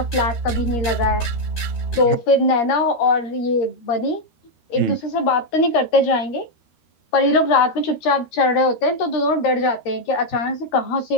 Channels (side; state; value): right; late; 13 ms